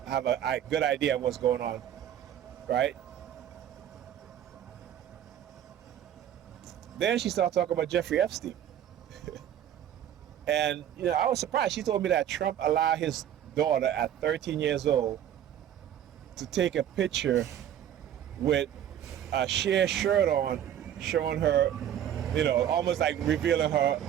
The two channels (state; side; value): quieter; left; 10.5 dB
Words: have a good idea of what's going on, right? Then she started talking about Jeffrey Epstein. And, I was surprised. She told me that Trump allowed his daughter at 13 years old to take a picture with a sheer shirt on, showing her, almost like revealing